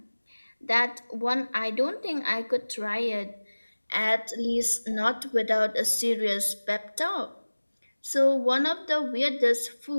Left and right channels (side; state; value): both; inverted; correlation -1.00